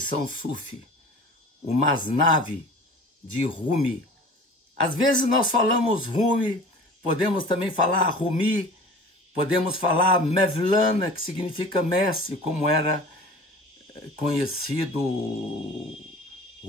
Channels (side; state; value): both; normal; correlation 0.41